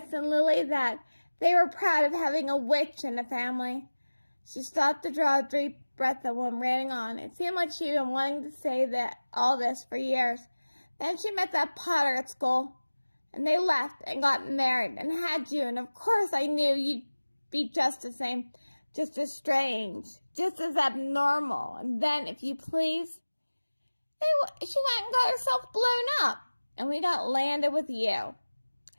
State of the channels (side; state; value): both; inverted; correlation -1.00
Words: and Lily that. They were proud of having a witch in the family." She stopped to draw a deep breath and went ranting on. It seemed like she'd been wanting to say all this for years. Then she met that Potter at school, and they left and got married and had you, and of course I knew you'd be just the same, just as strange, just as abnormal. And then, if you please, she went and got herself blown up, and we got landed with you."